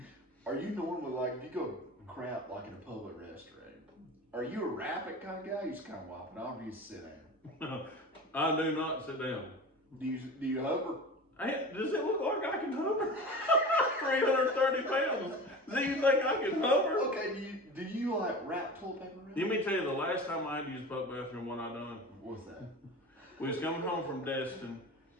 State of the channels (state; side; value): normal; both; correlation 0.33